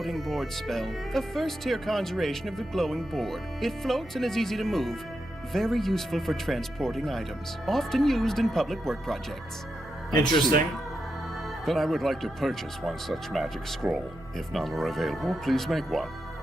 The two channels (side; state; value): both; normal; correlation 0.86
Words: board spell. A first-tier conjuration of the glowing board. It floats and is easy to move. Very useful for transporting items. Often used in public work projects. Interesting. Then I would like to purchase one such magic scroll. If none are available, please make one.